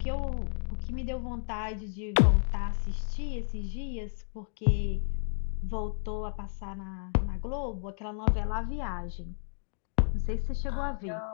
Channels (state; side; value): silent; right; digital silence